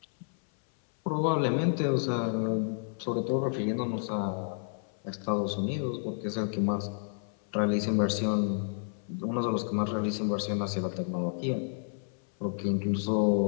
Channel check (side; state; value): right; silent; 57 dB below the other